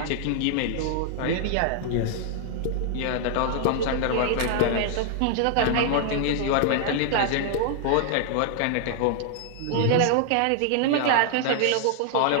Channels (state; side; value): different; both; correlation 0.00